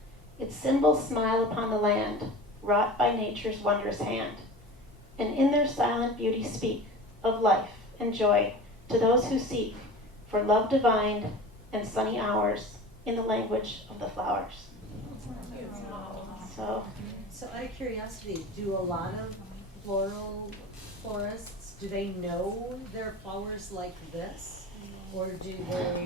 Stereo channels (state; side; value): normal; both; correlation 0.36